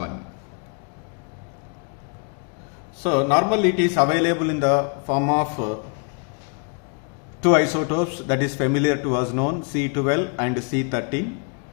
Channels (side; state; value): right; quieter; 38.8 dB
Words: So normally it is available in the form of two isotopes that is familiar to us known, C12 and C13.